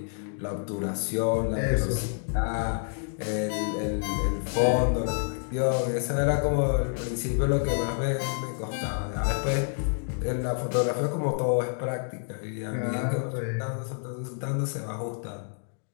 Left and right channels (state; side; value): silent; right; 59 dB below the other